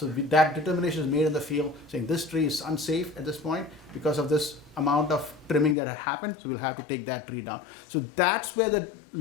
that determination is made in the field saying this tree is unsafe at this point because of this amount of trimming that had happened, so we'll have to take that tree down. So that's where the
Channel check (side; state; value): right; drops out; at 5.8 s